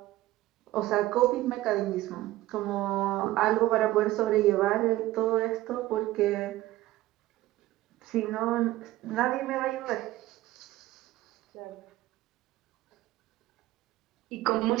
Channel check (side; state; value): left; quieter; 16.5 dB